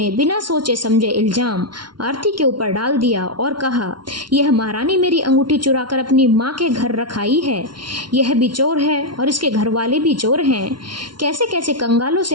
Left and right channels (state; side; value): late; left; 0.71 ms